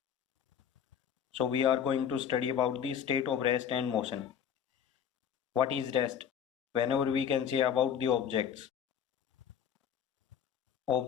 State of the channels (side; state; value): right; quieter; 8.4 dB